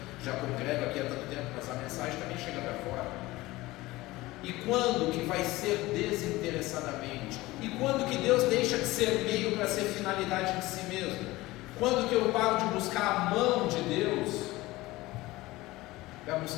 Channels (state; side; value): quieter; right; 19.2 dB